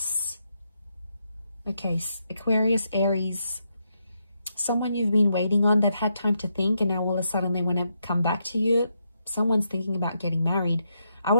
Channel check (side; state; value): both; inverted; correlation -0.81